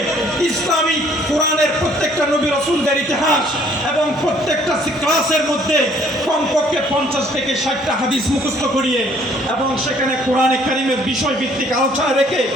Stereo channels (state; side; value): normal; both; correlation 0.60